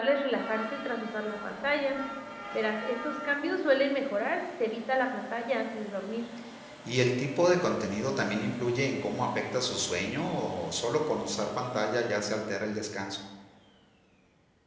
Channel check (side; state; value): both; identical; correlation 1.00